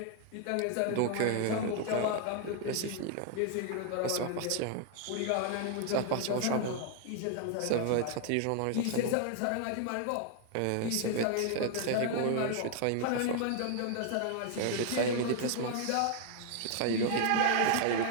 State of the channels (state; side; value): different; both; correlation 0.00